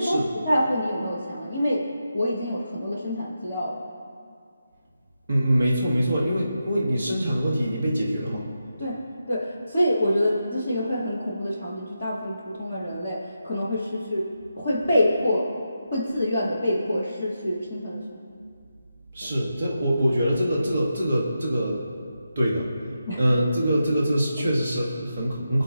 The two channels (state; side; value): inverted; both; correlation -0.87